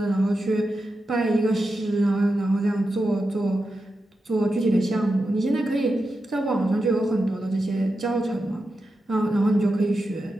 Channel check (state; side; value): normal; both; correlation 0.90